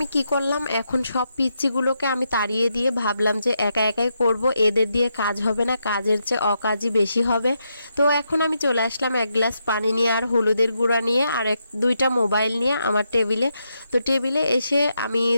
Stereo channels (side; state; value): both; inverted; correlation -0.82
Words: কি করলাম, এখন সব পিচ্চিগুলোকে আমি তাড়িয়ে দিয়ে ভাবলাম যে একা একাই করব, এদের দিয়ে কাজ হবে না, কাজের চেয়ে অকাজই বেশি হবে। তো এখন আমি চলে আসলাম এক গ্লাস পানি নিয়ে আর হলুদের গুঁড়া নিয়ে আর দুইটা মোবাইল নিয়ে আমার টেবিলে। তো টেবিলে এসে আমি